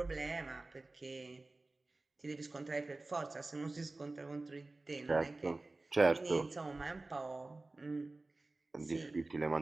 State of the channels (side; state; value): left; quieter; 3.2 dB